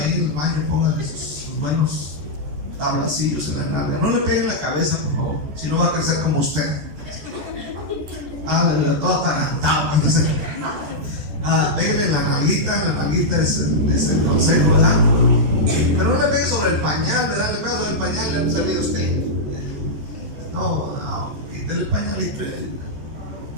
en el baño, póngale sus buenos tablacillos en la nalga. No le peguen la cabeza, por favor, si no va a crecer como usted. Todo atarantado. Péguenle la nalguita es el consejo, ¿verdad? Pero no le pegue sobre el pañal, ¿verdad? Le pega sobre el pañal, le ha salido usted. No, quítale el pañalito.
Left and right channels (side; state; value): left; late; 13 ms